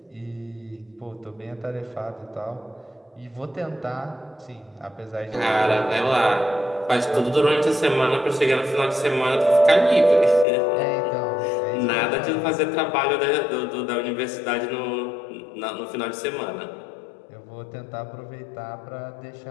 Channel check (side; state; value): right; drops out; at 10.5 s